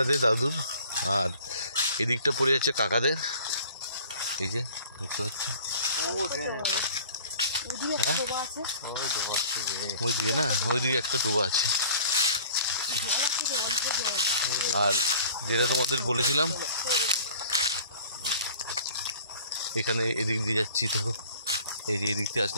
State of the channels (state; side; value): inverted; both; correlation -0.48